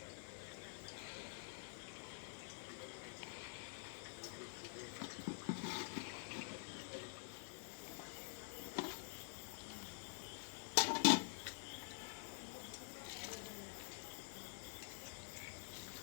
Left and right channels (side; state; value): right; silent; digital silence